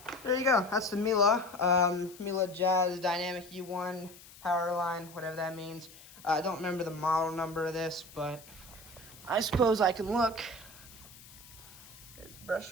there you go. That's the Miele Jazz Dynamic U1 power line, whatever that means. I don't remember the model number of this, but I suppose I can look. There's the brush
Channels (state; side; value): noise; left; hiss, 20 dB below the sound